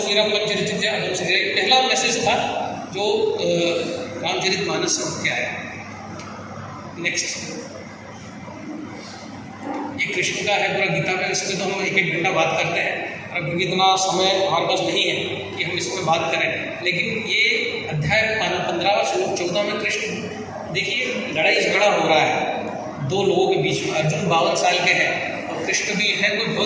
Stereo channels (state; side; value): identical; both; correlation 1.00